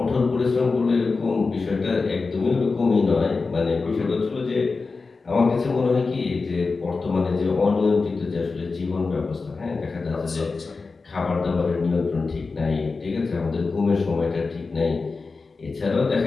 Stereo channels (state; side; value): quieter; right; 4.2 dB